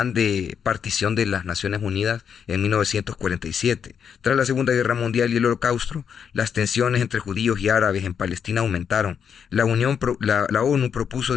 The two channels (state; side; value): quieter; right; 7.4 dB